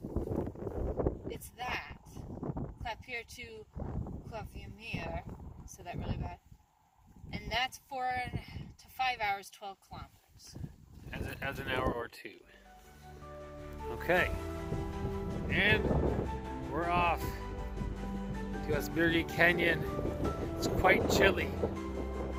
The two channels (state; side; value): identical; both; correlation 1.00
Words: it's that. Clap here to Claviamere, so that really bad. And that's 4 to 5 hours, 12 kilometers. As an hour or two. Okay. And we're off to Asbyrgi Canyon. It's quite chilly.